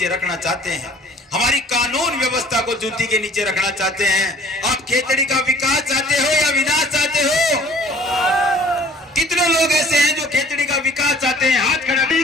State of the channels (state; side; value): normal; both; correlation 0.52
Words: रखना चाहते हैं, हमारी कानून व्यवस्था को जूती के नीचे रखना चाहते हैं। आप खेतड़ी का विकास चाहते हो या विनाश चाहते हो? कितने लोग ऐसे हैं जो खेतड़ी का विकास चाहते हैं? हाथ खड़ा